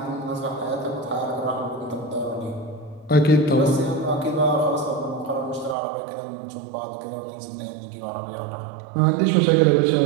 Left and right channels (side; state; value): left; drops out; at 5.8 s